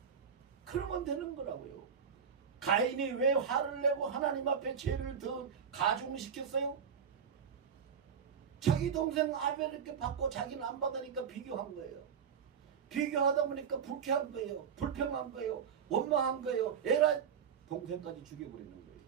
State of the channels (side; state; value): left; quieter; 7.2 dB